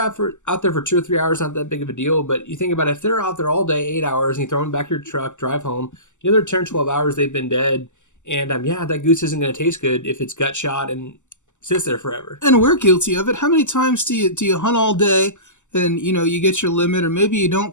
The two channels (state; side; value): late; right; 0.84 ms